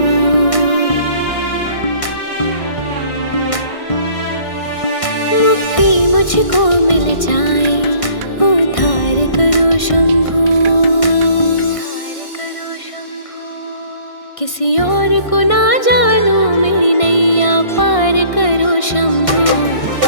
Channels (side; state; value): right; late; 1.6 ms